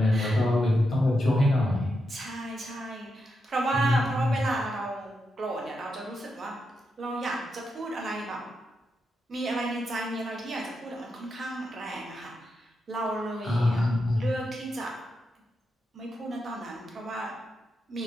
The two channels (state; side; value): normal; both; correlation 0.85